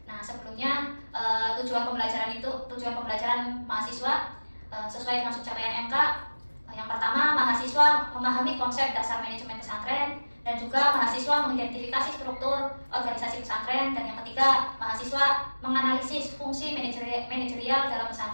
Nah, sebelumnya tujuan pembelajaran mahasiswa sesuai dengan subcapaian MK. Yang pertama, mahasiswa memahami konsep dasar manajemen pesantren dan juga mahasiswa mengidentifikasi struktur organisasi pesantren, dan yang ketiga, mahasiswa menganalisis fungsi manajerial dalam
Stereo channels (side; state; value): both; inverted; correlation -1.00